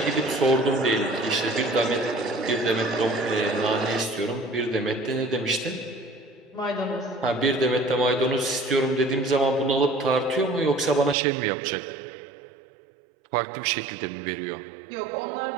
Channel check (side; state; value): left; drops out; at 11.2 s